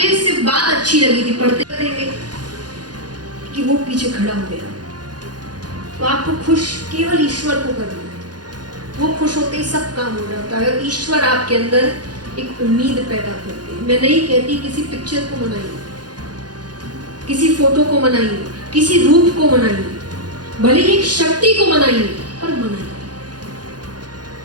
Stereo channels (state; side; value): late; left; 0.69 ms